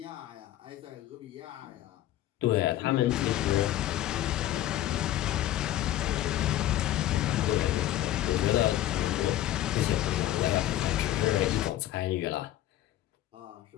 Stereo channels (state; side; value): quieter; right; 13.6 dB